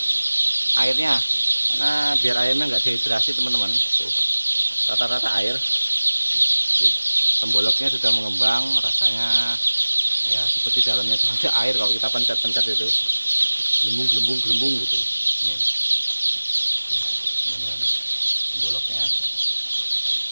airnya, karena biar ayamnya nggak dehidrasi teman-teman. Tuh rata-rata air. Temboloknya sudah mengembang, rasanya ya seperti dalamnya tuh ada air kalau kita pencet-pencet itu, gelembung gitu. Nih temboloknya,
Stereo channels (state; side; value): inverted; both; correlation -1.00